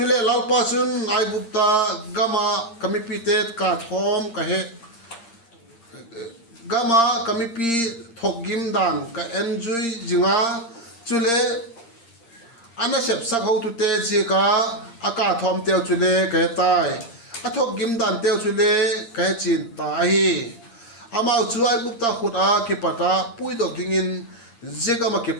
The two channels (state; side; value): late; right; 8.7 ms